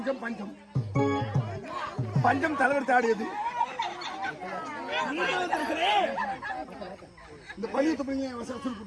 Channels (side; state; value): both; identical; correlation 1.00